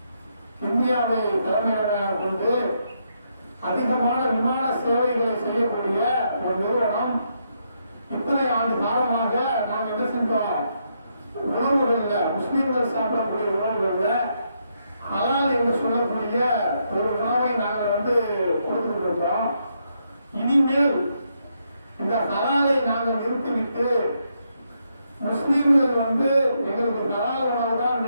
இந்தியாவை தலைமையிடமாக கொண்டு அதிகமான விமான சேவைகளை செய்யக்கூடிய ஒரு நிறுவனம் இத்தனை ஆண்டு காலமாக நாம் என்ன செஞ்சோம், உணவுகள்ல முஸ்லீம்கள் சாப்பிடக்கூடிய உணவுகள்ல ஹலால் என்று சொல்லக்கூடிய ஒரு உணவை நாங்கள் கொடுத்துட்டு இருக்கிறோம். இனிமேல் இந்த ஹலாலை நாங்கள் நிறுத்திவிட்டு முஸ்லீம்கள் எங்களுக்கு ஹலால் உணவு தான்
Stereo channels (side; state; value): both; inverted; correlation -0.78